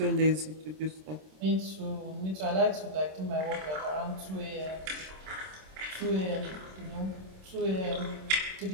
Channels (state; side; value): late; left; 26 ms